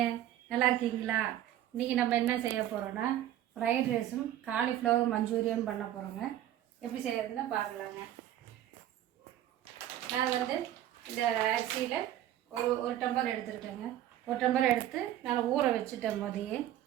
நல்லா இருக்கீங்களா? இன்றைக்கி நம்ம என்ன செய்ய போகிறோன்னா ஃப்ரைட் ரைஸும் காலிஃப்ளவர் மஞ்சூரியன் பண்ண போகிறோங்க. எப்படி செய்யறதுன்னு பார்க்கலாங்க. நான் இந்த அரிசியில் ஒரு டம்ளர் எடுத்துருக்கேங்க. ஒரு டம்ளர் எடுத்து நான் ஊற வச்சுட்டேன். போதையே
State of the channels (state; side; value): quieter; left; 12.5 dB